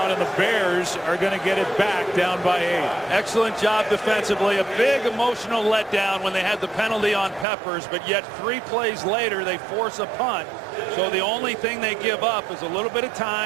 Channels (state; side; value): drops out; left; at 7.5 s